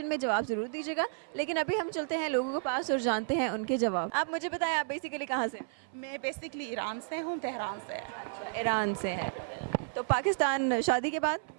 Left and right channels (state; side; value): silent; left; 56 dB below the other